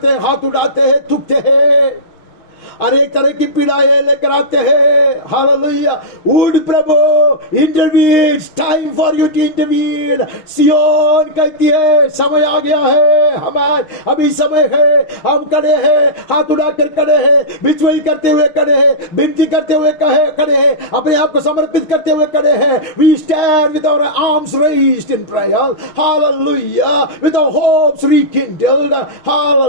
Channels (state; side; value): late; right; 6.5 ms